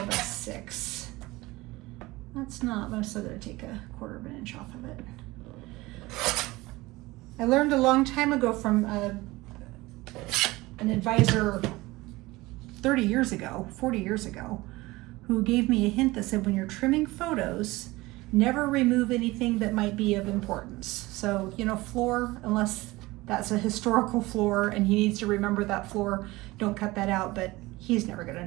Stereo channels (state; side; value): quieter; left; 20.4 dB